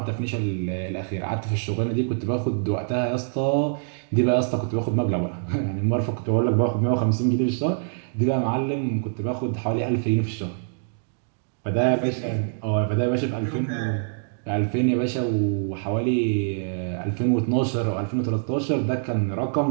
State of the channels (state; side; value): silent; left; digital silence